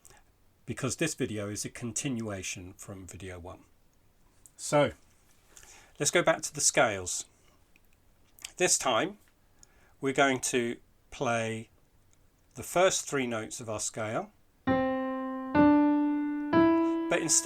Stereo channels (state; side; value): identical; both; correlation 1.00